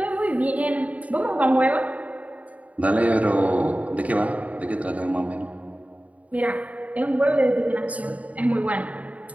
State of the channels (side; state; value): left; late; 0.069 ms